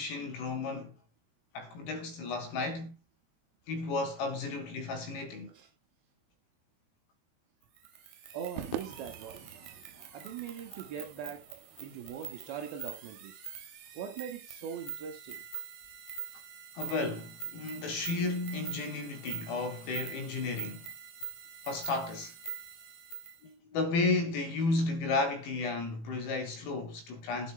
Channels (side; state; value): right; late; 18 ms